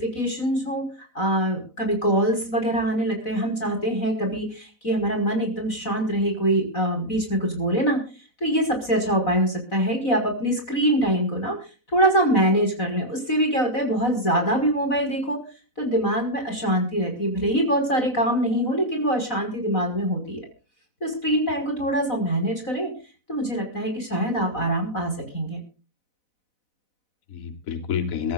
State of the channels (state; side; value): late; right; 4.0 ms